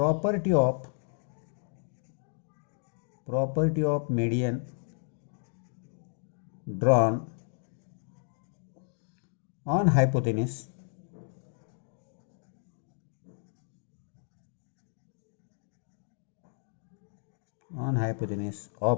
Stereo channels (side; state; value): right; silent; 55 dB below the other